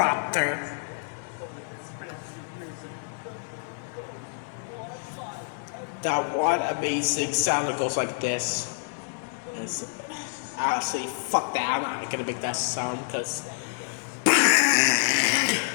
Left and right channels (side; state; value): right; silent; digital silence